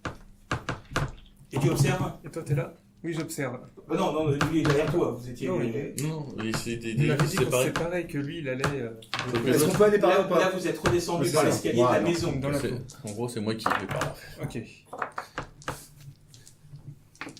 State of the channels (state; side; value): identical; both; correlation 1.00